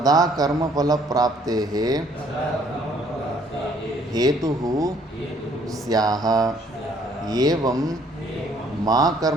ಕರ್ಮಫಲಪ್ರಾಪ್ತೇಃ ಹೇತುಃ ಸ್ಯಾಹ. ಏವಂ ಮಾ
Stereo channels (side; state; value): both; normal; correlation 0.62